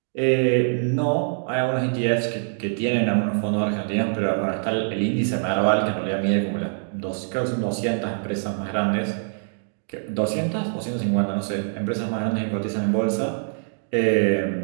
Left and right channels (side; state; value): left; silent; digital silence